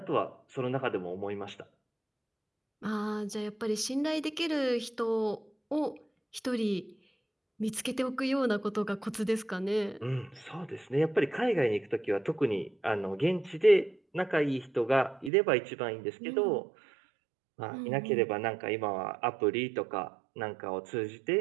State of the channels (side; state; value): left; drops out; at 15.3 s